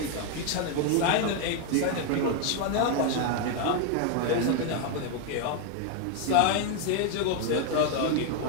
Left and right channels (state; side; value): different; both; correlation 0.00